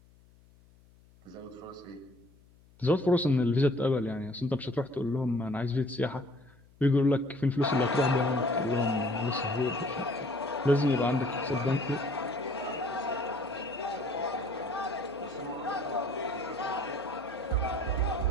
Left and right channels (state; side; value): noise; left; hum, 28 dB below the sound